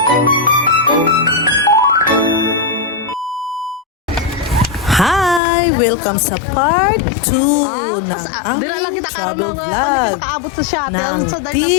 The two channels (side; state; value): right; drops out; at 5.4 s